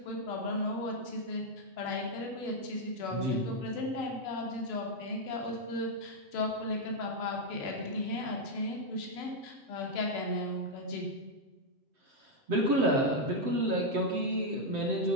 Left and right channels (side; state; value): left; late; 7.7 ms